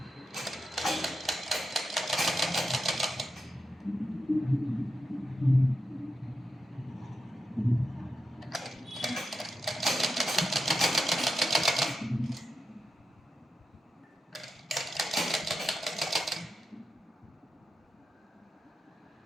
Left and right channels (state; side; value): normal; both; correlation 0.88